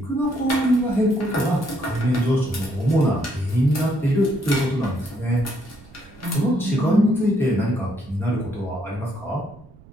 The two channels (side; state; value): right; noise; rumble, 24 dB below the sound